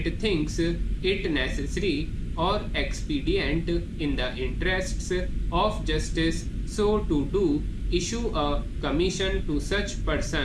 thinks it necessary or expedient in the interests of justice so to do, issue a commission to such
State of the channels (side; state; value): both; identical; correlation 1.00